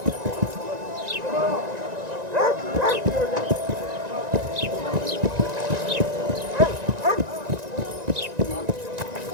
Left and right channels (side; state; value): left; late; 1.9 ms